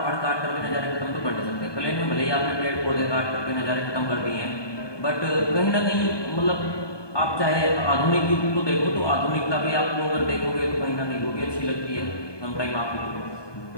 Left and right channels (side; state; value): right; late; 1.2 ms